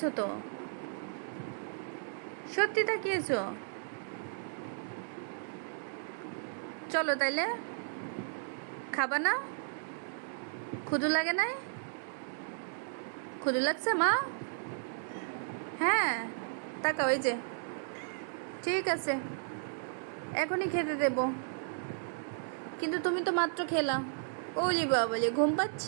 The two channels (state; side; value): silent; left; digital silence